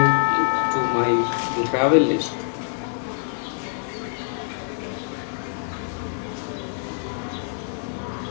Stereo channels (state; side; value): silent; right; digital silence